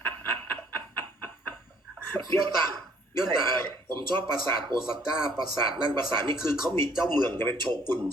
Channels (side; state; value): both; normal; correlation 0.61